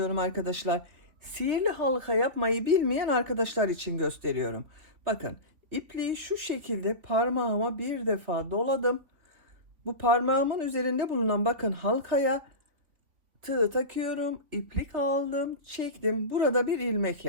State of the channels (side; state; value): left; late; 3.7 ms